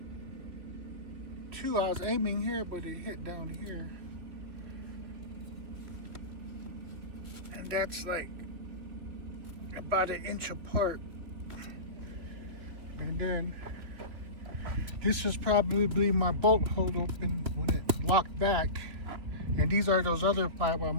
two. I was aiming here, but it hit down here. And that's like about an inch apart. And then this is probably my bolt hold open when it locked back. And these are those other 5 I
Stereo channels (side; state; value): left; late; 3.2 ms